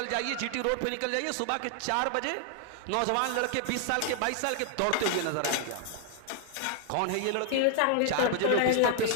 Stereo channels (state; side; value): different; both; correlation 0.00